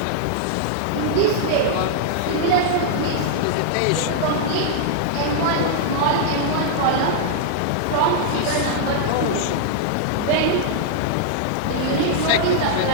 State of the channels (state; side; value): different; both; correlation -0.01